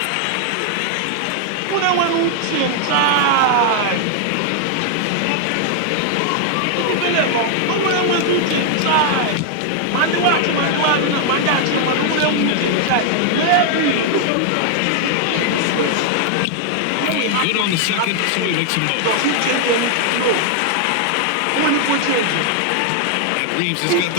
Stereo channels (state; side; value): different; both; correlation 0.00